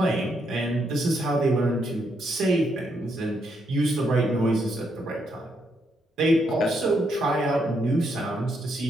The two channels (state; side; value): normal; both; correlation 0.77